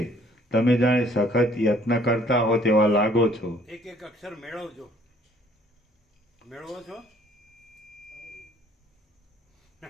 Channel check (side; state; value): both; normal; correlation 0.59